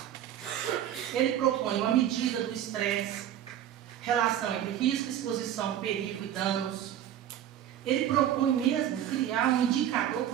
Ele propõe uma medida do estresse, relação entre risco, exposição, perigo e danos. Ele propõe mesmo criar um indicador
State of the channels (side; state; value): left; quieter; 10.8 dB